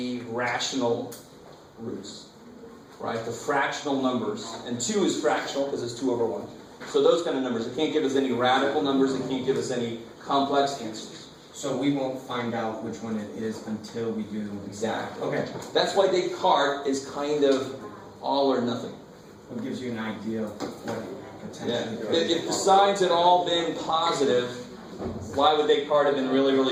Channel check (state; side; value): identical; both; correlation 1.00